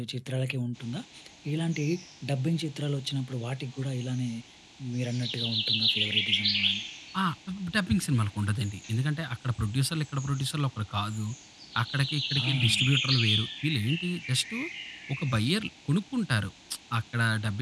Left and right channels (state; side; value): identical; both; correlation 1.00